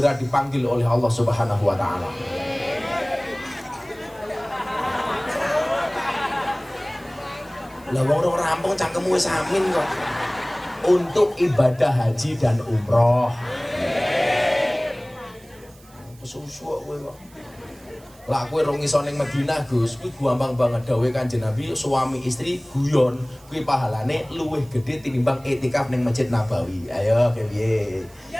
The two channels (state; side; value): noise; right; hiss, 26 dB below the sound